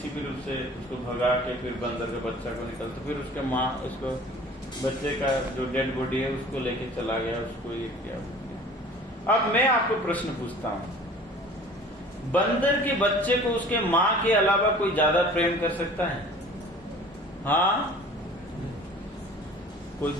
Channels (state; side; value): normal; both; correlation 0.46